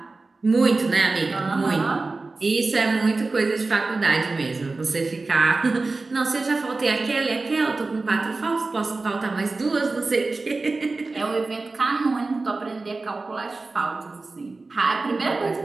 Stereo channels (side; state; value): left; quieter; 3.6 dB